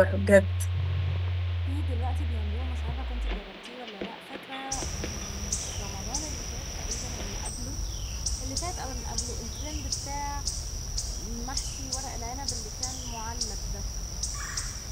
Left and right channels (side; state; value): both; identical; correlation 1.00